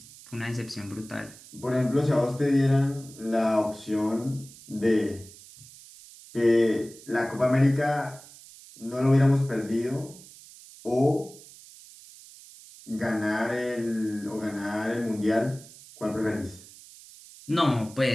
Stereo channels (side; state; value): right; noise; hiss, 20 dB below the sound